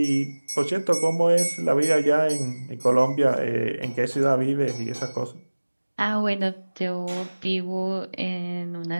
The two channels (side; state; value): both; inverted; correlation -1.00